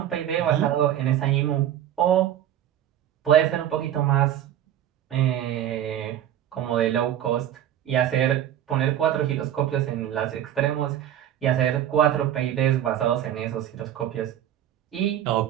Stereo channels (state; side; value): quieter; left; 11.1 dB